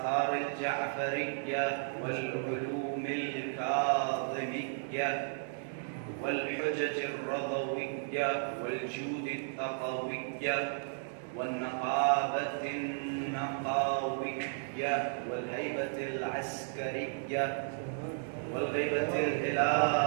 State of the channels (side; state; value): left; silent; digital silence